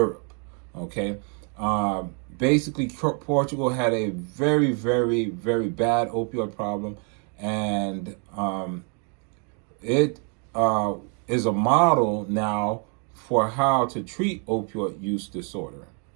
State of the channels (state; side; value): quieter; left; 38.9 dB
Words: Okay, basically Portugal had a very, very, very bad opioid problem, and it is a model now for how to treat opioid use disorder.